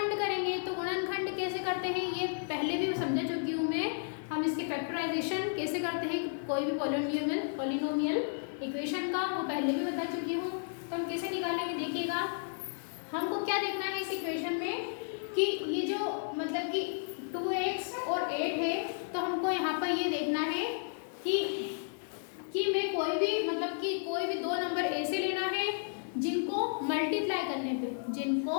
करेंगे। तो गुणनखंड कैसे करते हैं ये पहले भी समझा चुकी हूँ मैं। हम इसके फैक्टराइजेशन कैसे करते हैं कोई भी पॉलिनोमियल इक्वेशन का, वो पहले भी बता चुकी हूँ। तो हम कैसे निकालेंगे देखिएगा। हमको क्या देखना है इस इक्वेशन में कि ये जो मतलब कि 2x और 8 है, तो हमको यहाँ पर ये देखना है कि मैं कोई भी मतलब कि कोई भी दो नंबर ऐसे लेना है जिनको मल्टीप्लाई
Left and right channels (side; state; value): right; silent; digital silence